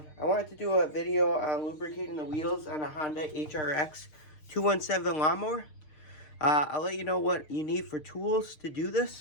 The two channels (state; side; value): late; right; 6.5 ms